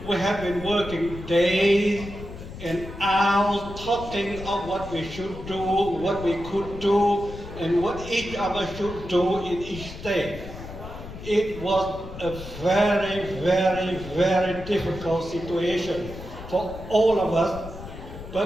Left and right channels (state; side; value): noise; left; rumble, 12 dB below the sound